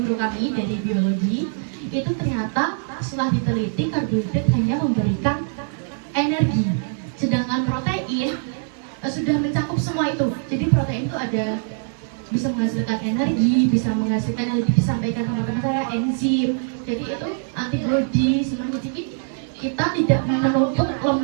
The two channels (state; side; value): silent; left; 64 dB below the other